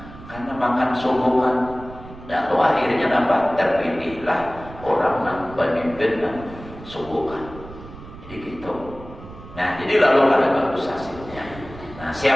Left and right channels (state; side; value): noise; right; rumble, 16 dB below the sound